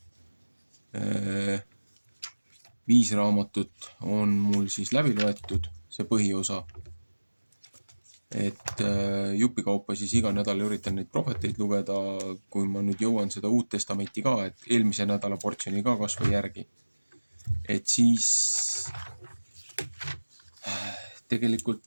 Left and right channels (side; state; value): both; inverted; correlation -1.00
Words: 5 raamatut on mul siis läbi loetud, see põhiosa, et jupikaupa siis iga nädal üritan neid prohveteid lugeda, kui ma nüüd jõuan seda Uut Testamenti ka, et eelmise nädala portsjoni ka kas või järgi. Et siis tegelikult